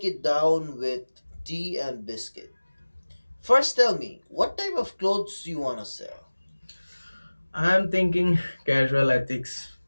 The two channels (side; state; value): both; inverted; correlation -1.00